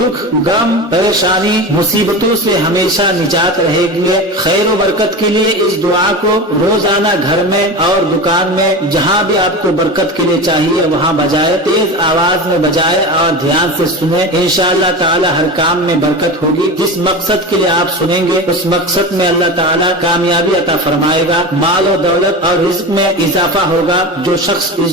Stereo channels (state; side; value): normal; both; correlation 0.27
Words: गम, परेशानी, मुसीबतों से हमेशा निजात रहेगी। खैर व बरकत के लिए इस दुआ को रोजाना घर में और दुकान में जहाँ भी आपको बरकत के लिए चाहिए वहाँ बजाए, तेज आवाज में बजाए और ध्यान से सुने। इंशाअल्लाह ताला हर काम में बरकत होगी। जिस मकसद के लिए आप सुनेंगे उस मकसद में अल्लाह ताला कामयाबी अता फरमाएगा। माल और दौलत और रिज़्क में इजाफा होगा। जो शख्स इस